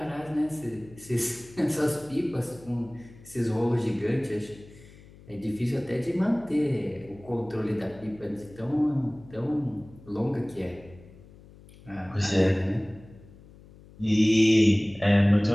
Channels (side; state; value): left; noise; hum, 22 dB below the sound